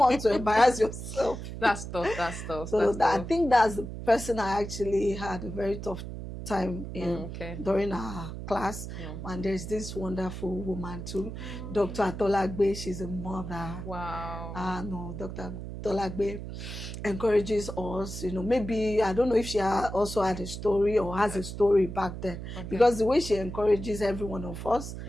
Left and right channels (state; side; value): noise; right; hum, 8 dB below the sound